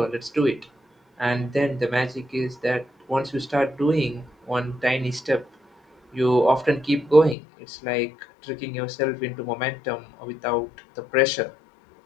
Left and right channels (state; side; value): drops out; right; at 7.4 s